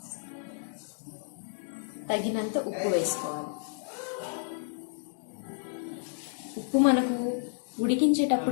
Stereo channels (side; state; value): right; silent; digital silence